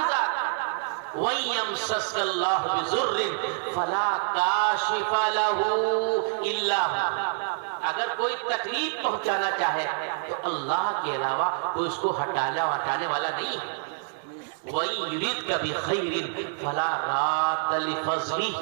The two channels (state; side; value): silent; left; digital silence